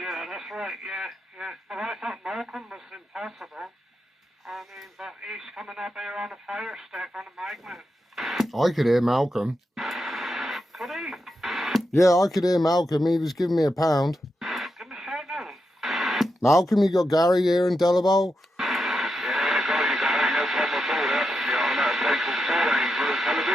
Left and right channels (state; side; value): normal; both; correlation 0.86